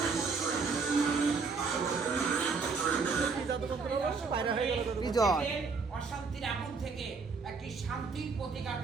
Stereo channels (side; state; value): left; quieter; 4.7 dB